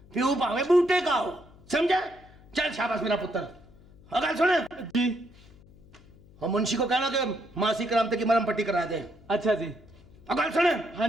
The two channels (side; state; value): left; noise; hum, 25 dB below the sound